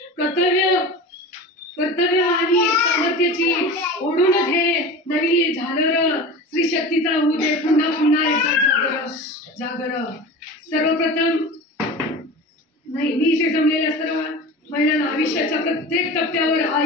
कर्तव्य आणि सामर्थ्याची ओढून घे नवी झालर। स्त्री शक्तीचा होऊ दे पुन्हा एकदा जागर। सर्वप्रथम मी इथे जमलेल्या सर्व महिलांना आयुष्याच्या प्रत्येक टप्प्यावर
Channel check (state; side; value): normal; both; correlation 0.32